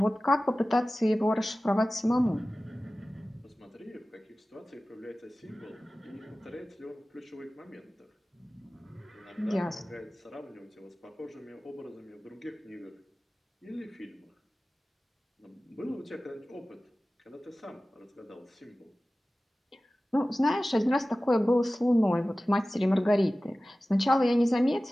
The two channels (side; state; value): both; normal; correlation 0.97